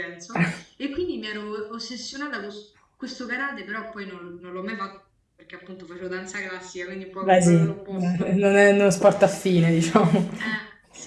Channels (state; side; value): identical; both; correlation 1.00